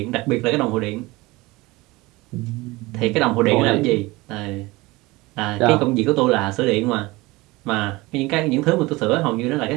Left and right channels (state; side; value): quieter; left; 21.7 dB